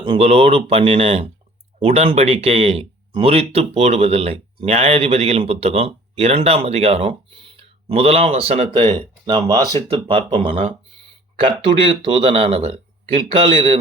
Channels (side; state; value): both; normal; correlation 0.51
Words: உங்களோடு பண்ணின உடன்படிக்கையை முறித்து போடுவதில்லை. நியாயாதிபதிகளின் புத்தகம் 2ஆம் அதிகாரம் 1ஆம் வசனத்தை நாம் வாசித்து பார்ப்போமானா, கர்த்தருடைய தூதனானவர்